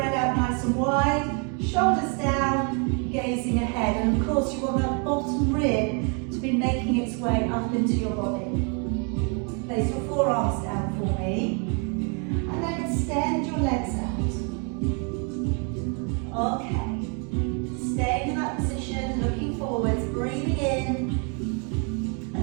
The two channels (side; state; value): left; quieter; 37.2 dB